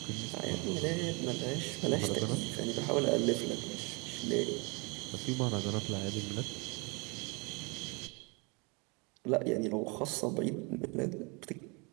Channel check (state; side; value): quieter; left; 30.2 dB